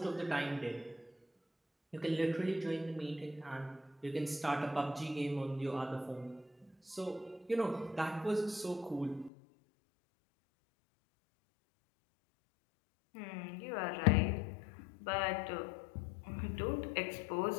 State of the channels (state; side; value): drops out; right; at 9.3 s